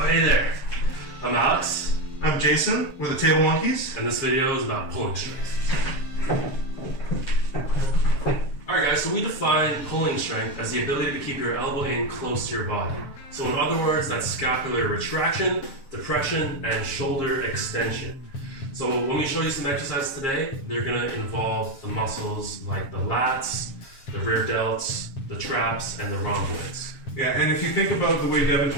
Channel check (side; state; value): right; late; 7.5 ms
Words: there, I'm Alex. I'm Jason, we're the Table Monkeys. And this video is about pulling strength. Alright guys, so we define pulling strength as the ability to keep your elbow in close to your body. So in other words, that's scapular retraction, depression, and shoulder extension. So when we show you some exercises today, they're going to involve the muscles like the lats, the rear delts, the traps, and the rhomboids. Yeah, and if you think about the way Devin